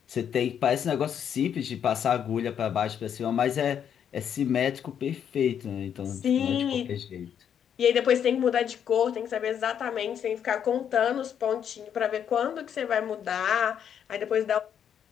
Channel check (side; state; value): right; quieter; 8.6 dB